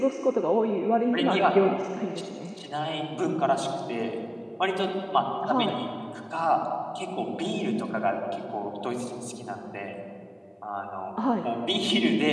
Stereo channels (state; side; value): identical; both; correlation 1.00